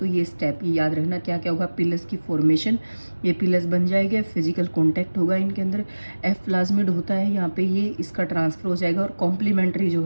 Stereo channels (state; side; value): inverted; both; correlation -1.00